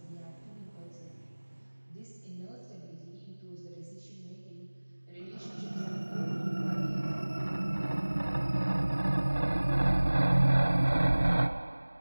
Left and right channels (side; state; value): both; inverted; correlation -1.00